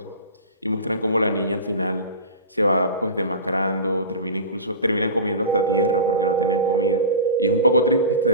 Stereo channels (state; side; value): inverted; both; correlation -0.30